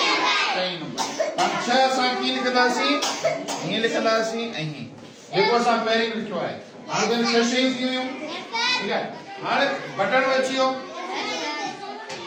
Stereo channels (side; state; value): both; identical; correlation 1.00